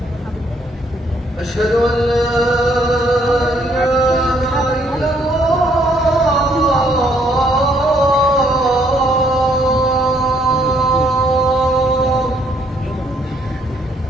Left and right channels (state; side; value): normal; both; correlation 0.68